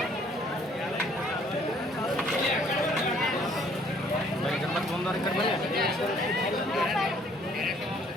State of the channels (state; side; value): normal; both; correlation 0.61